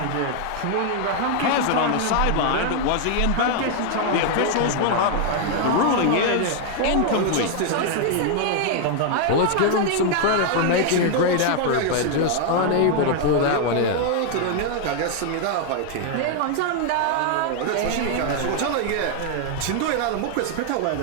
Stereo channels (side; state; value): both; different; correlation 0.00